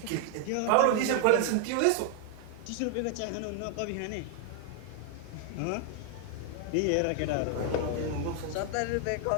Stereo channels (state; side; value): different; both; correlation 0.00